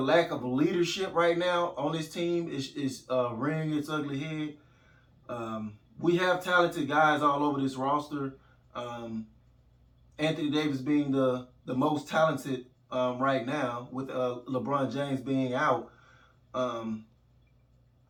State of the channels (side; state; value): both; identical; correlation 1.00